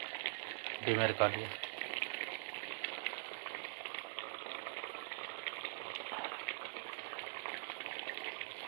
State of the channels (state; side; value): silent; left; digital silence